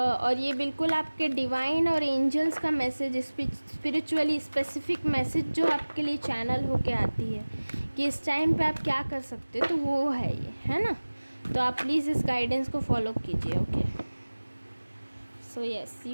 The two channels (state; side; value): inverted; both; correlation -1.00